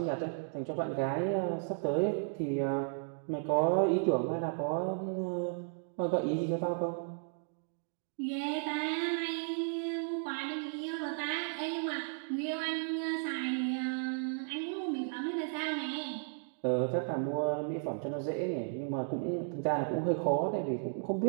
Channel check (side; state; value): left; silent; digital silence